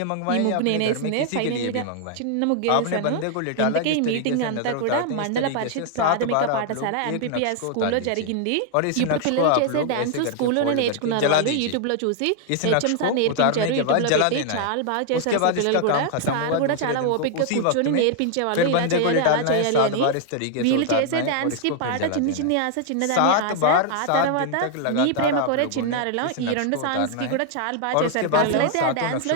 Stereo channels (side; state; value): both; different; correlation 0.00